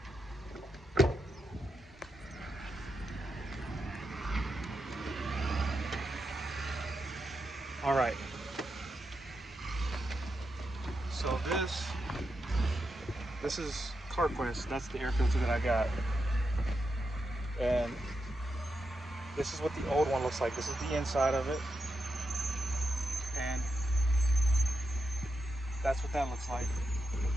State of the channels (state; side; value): normal; both; correlation 0.85